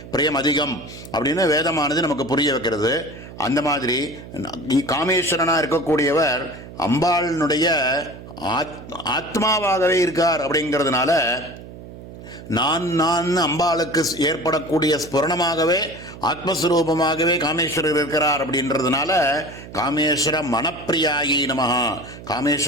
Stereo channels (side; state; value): right; noise; hum, 15 dB below the sound